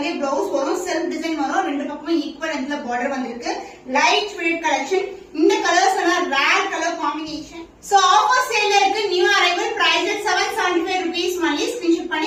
பிளவுஸ் வரும், செல்ஃப் டிசைன் வரும். ரெண்டு பக்கமும் ஈக்குவல் லென்த்ல பார்டர் வந்திருக்கு. Light weight collection. இந்த கலர்ஸ் எல்லாம் rare colour combination. So offer சேல்ல இருக்கு. New arrival, price 775 rupees only. Screenshot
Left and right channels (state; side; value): identical; both; correlation 1.00